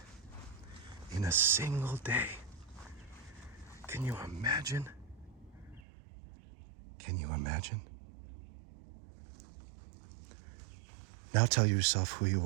in a single day. Can you imagine? Can you imagine? Now tell yourself who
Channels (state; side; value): drops out; left; at 5.8 s